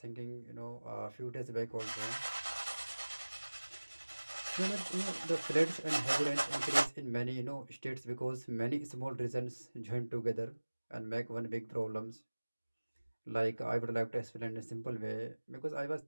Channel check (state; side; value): inverted; both; correlation -1.00